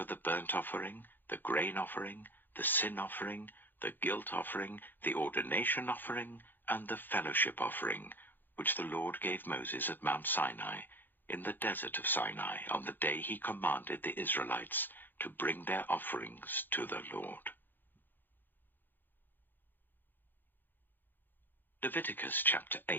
the burnt offering, the grain offering, the sin offering, the guilt offering, the ordination offering, and the fellowship offering, which the Lord gave Moses at Mount Sinai, in the desert of Sinai, on the day he commanded the Israelites to bring their offerings to the Lord. Leviticus chapter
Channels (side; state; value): right; late; 0.092 ms